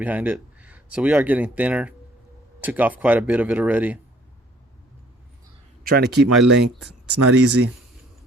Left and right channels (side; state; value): both; normal; correlation 0.59